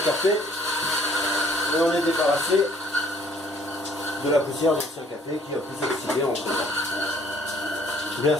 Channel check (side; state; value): both; normal; correlation 0.60